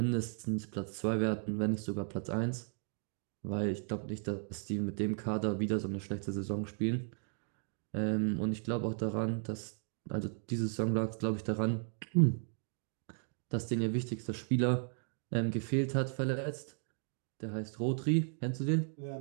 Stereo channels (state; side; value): silent; left; 54 dB below the other